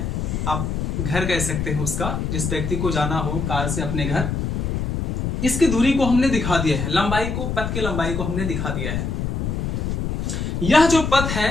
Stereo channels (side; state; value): left; noise; rumble, 1 dB below the sound